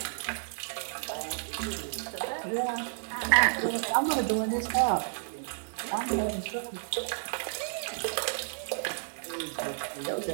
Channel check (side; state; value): left; silent; digital silence